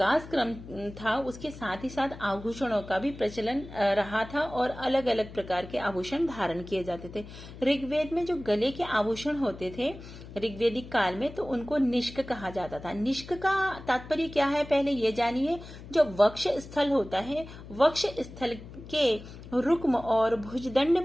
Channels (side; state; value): left; noise; hum, 15 dB below the sound